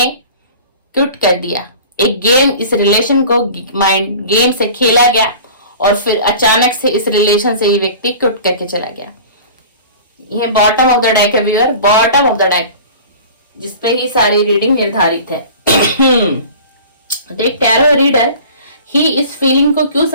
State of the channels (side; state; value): both; inverted; correlation -0.41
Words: क्विट कर दिया। एक गेम, इस रिलेशन को माइंड गेम से खेला गया और फिर अचानक से इस रिलेशन से ये व्यक्ति क्विट करके चला गया। ये बॉटम ऑफ द डेक है viewer, bottom of the deck, जिसपे ही सारी रीडिंग निर्धारित है। तो एक टैरो रीडर ही इस फीलिंग को क्यों